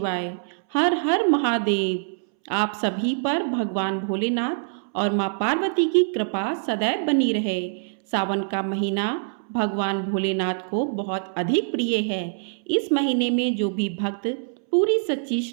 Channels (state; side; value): silent; left; 62 dB below the other